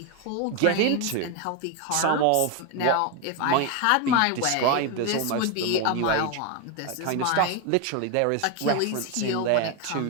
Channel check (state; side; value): different; both; correlation 0.01